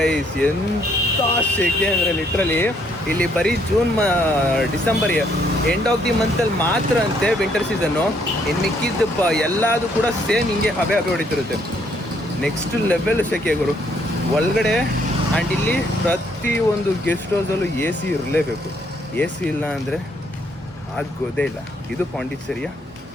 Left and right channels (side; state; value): both; normal; correlation 0.69